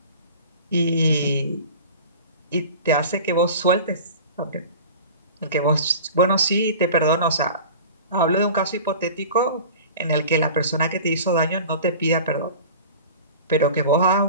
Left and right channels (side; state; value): both; inverted; correlation -0.38